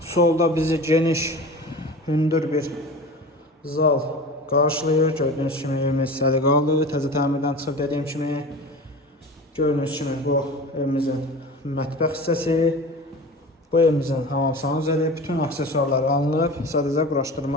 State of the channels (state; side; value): normal; both; correlation 0.35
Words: solda bizi geniş, hündür bir zal qarşılayır. Gördüğünüz kimi evimiz səliqəli, təzə təmirdən çıxıb dediyim kimi. Gördüğünüz kimi bu evimizin mətbəx hissəsi. Bu evimizin hamamsana üzəri bütün aksesuarlar alınıb, sadəcə